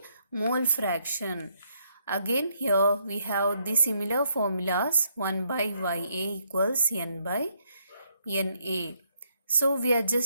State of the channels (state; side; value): inverted; both; correlation -0.74